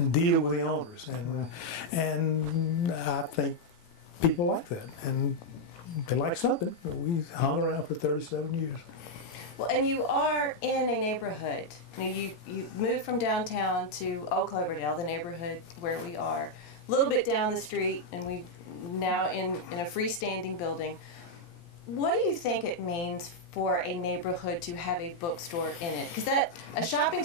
deal with the owners, and I think people like that, and they like something. We hung around for 37 years. Well, and you are in a neighborhood. You moved from downtown to Old Cloverdale, the neighborhood where we are, a little bit down the street, and we now in a freestanding building. What do you think it means for a neighborhood to have a bookstore in it? Because a shopping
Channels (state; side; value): late; right; 17 ms